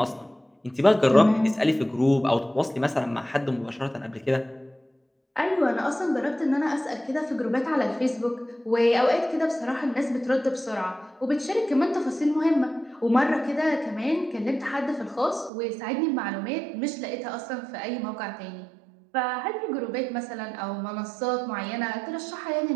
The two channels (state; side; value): drops out; left; at 15.5 s